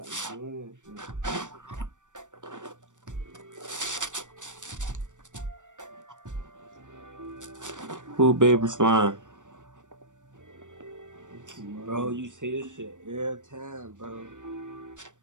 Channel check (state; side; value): late; left; 0.86 ms